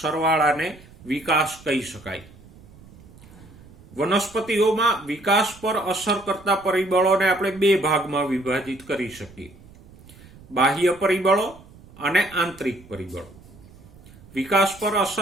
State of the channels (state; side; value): noise; right; rumble, 22 dB below the sound